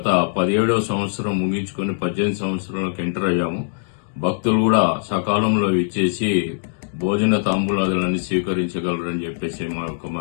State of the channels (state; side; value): silent; right; digital silence